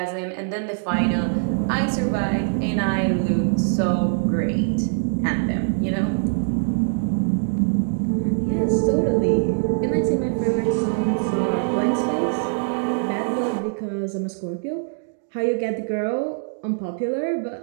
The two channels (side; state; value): left; silent; digital silence